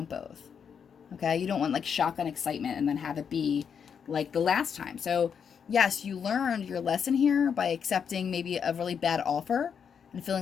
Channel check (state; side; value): quieter; right; 7.1 dB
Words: both. Okay, you don't want like shotgun excitement and then have it be like the last time. So yes, you learned your lesson here by accepting maybe a really bad offer and